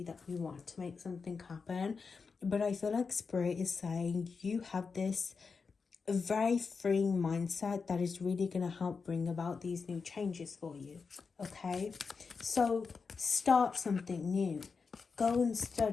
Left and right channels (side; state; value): right; quieter; 5.1 dB